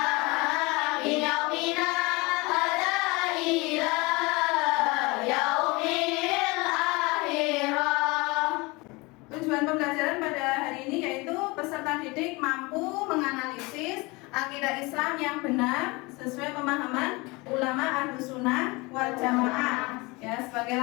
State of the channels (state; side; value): quieter; right; 25.0 dB